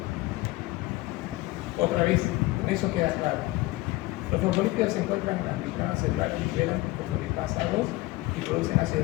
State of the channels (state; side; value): quieter; right; 19.8 dB